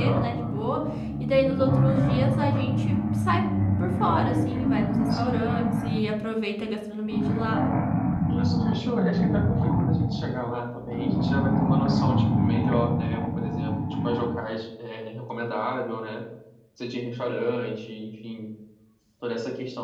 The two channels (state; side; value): identical; both; correlation 1.00